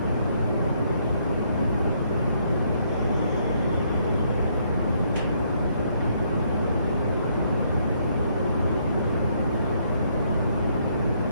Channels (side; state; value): both; inverted; correlation -0.71